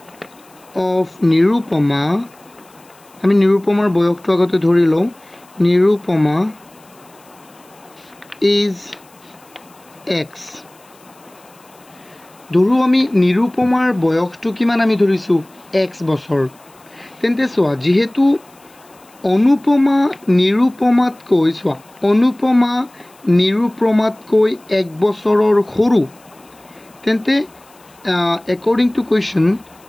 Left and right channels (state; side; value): noise; left; hiss, 29 dB below the sound